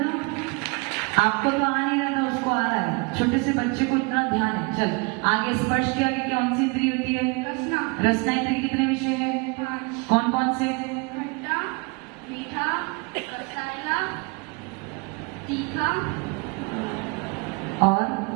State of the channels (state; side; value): quieter; left; 29.9 dB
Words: आपको तो आ नहीं रहा था, उसको आ रहा है। छोटे से बच्चे को इतना ध्यान है। चल आगे स्पर्श के आगे कौन सी इंद्रिय होती है? रसना। रसना इंद्रिय के कितने विषय है? 5। कौन कौन से? खट्टा, मीठा, कसाला, तीखा और